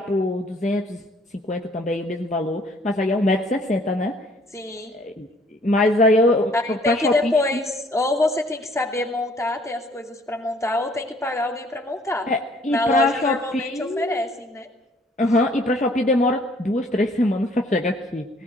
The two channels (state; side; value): normal; both; correlation 0.59